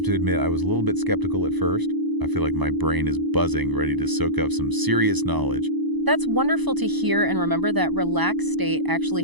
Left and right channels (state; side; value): late; left; 1.0 ms